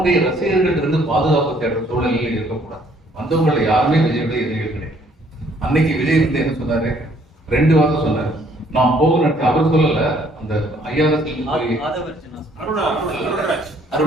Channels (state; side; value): normal; both; correlation 0.63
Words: ரசிகர்கள் இருந்து பாதுகாப்பு தேடுற சூழ்நிலையில் இருக்கக்கூடாது. வந்தவங்களை யாருமே விஜயுடைய எதிரிகள் கிடையாது. அன்னைக்கு விஜய் வந்து என்ன சொன்னாரு, 2 வாரம் சொன்னாரு, நான் போகணும். அவர் சொல்லல, அந்த ஐஆர்எஸ்